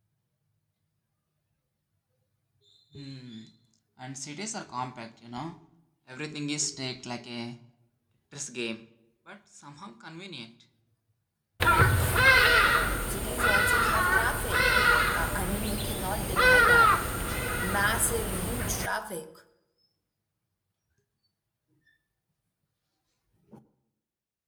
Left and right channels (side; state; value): both; identical; correlation 1.00